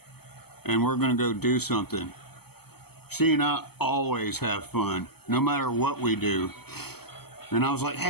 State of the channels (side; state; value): right; late; 0.96 ms